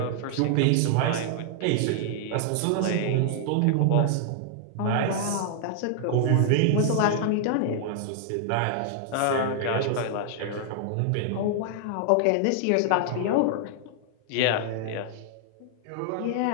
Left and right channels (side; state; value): both; different; correlation -0.01